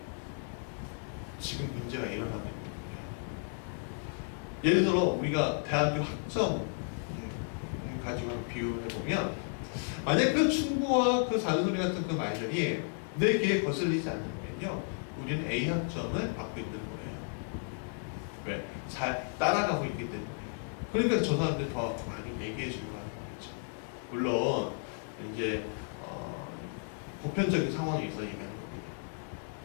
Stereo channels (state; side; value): silent; right; 55 dB below the other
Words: 지금 문제가 일어나고 있는 거예요. 예를 들어 우리가 대학교 학점 가지고 비유를 해보면 만약 그 충고와 그 잔소리 같은 그 말들이 내 귀에 거슬리지 않으면요 우리는 A 학점을 받고 있는 거예요. 왜? 잘 따라가고 있기 때문에. 그러니까 저 사람들 더 많이 얘기해 주려고 하는 거죠. 물론 이제 보편적인 상황에서 얘기하는 겁니다.